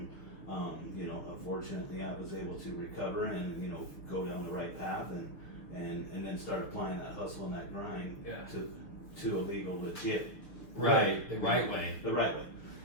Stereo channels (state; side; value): late; right; 6.6 ms